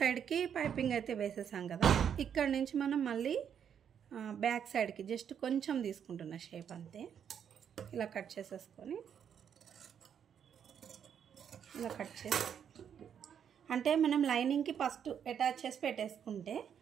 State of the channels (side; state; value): left; quieter; 8.3 dB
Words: పైపింగ్ అయితే వేసేసాం కదా. ఇక్కడ నుంచి మనం మళ్ళీ బ్యాక్ సైడ్కి జస్ట్ కొంచెం తీసుకుంటున్న షేప్ అంతే. ఇలా కట్ చేసేసుకొని ఇలా కట్ చేసి అంటే మనం లైనింగ్కి ఫస్ట్ అటాచ్ చేసి పెట్టేసుకుంటే